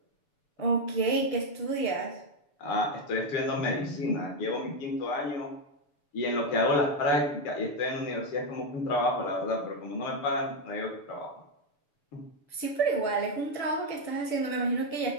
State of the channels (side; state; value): right; late; 6.9 ms